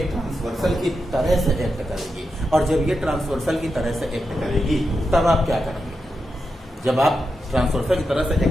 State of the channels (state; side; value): normal; both; correlation 0.87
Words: ट्रांसवर्सल की तरह से एक्ट करेगी। और जब ये ट्रांसवर्सल की तरह से एक्ट करेगी तब आप क्या करेंगे? जब आप ट्रांसवर्सल की तरह से